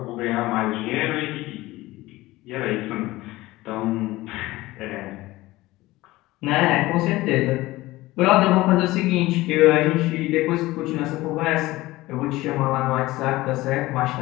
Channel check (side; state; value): right; quieter; 18.6 dB